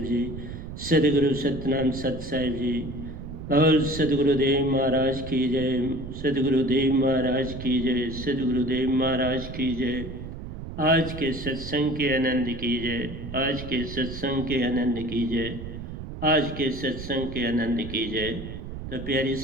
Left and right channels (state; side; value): noise; right; rumble, 9 dB below the sound